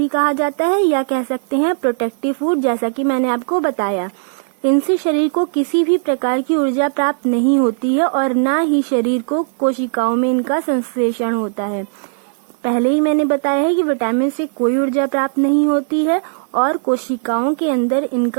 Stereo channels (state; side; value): silent; left; 65 dB below the other